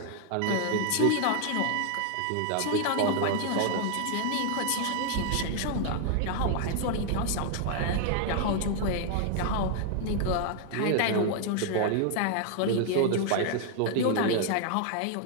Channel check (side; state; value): both; different; correlation 0.00